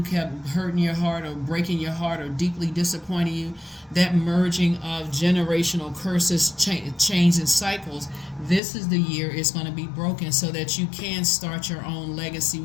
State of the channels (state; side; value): drops out; right; at 8.6 s